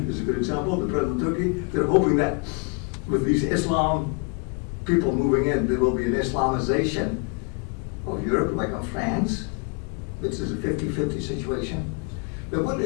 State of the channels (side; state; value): right; quieter; 32.5 dB